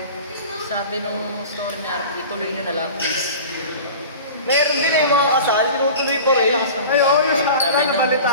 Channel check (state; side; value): inverted; both; correlation -0.38